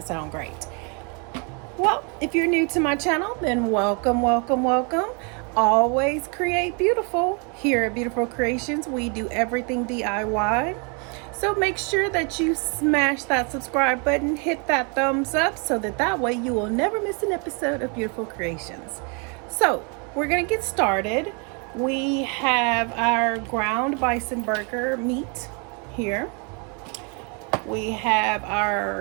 sound great? Well, if you're new to my channel, then welcome, welcome, welcome. Always create beautiful. Here at Beautiful Creations, we do everything DIY. So make sure that you smash that subscribe button, hit that thumbs up so that way you will never miss an episode of Beautiful Creations. So we're gonna get started. We have our ground bison burger meat here. We have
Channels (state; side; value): quieter; left; 35.3 dB